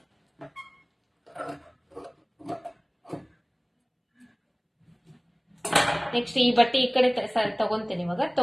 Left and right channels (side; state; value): both; identical; correlation 1.00